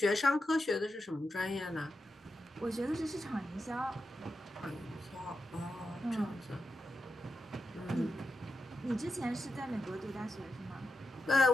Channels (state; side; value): normal; both; correlation 0.89